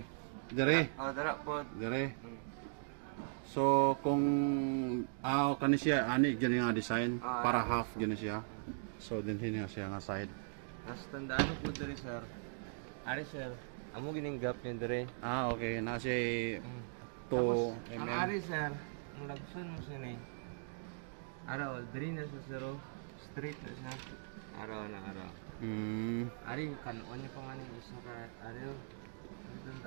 dire. Oh, dara po. Dire. So kung kani siya ani gani nga design para half gani siya. So dinhi nga siya nga side. As tandaan mo po dire sir. Ari sir, amo gining gap niya dire. Okay. Na siya 2 Ang mm. ari sir, ang lagson mo siya ni. Araw, dire na sa sir oh. Straight na siya. Araw na araw. Ari kanuan niya pa nga ni isa ka ari oh. Doon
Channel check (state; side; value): silent; left; digital silence